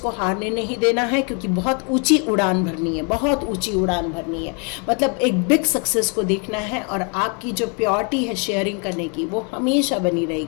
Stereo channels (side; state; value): right; quieter; 36.9 dB